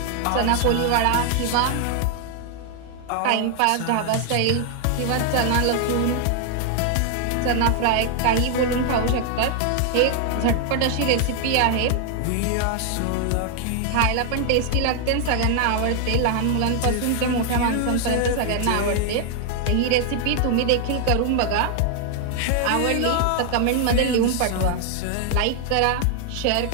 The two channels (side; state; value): both; different; correlation 0.00